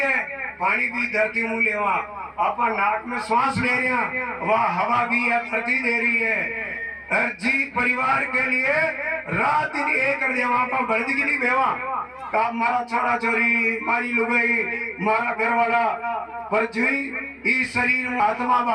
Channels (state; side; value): identical; both; correlation 1.00